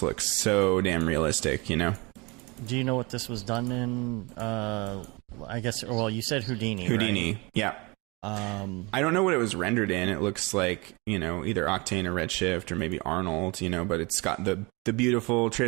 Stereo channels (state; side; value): quieter; left; 26.8 dB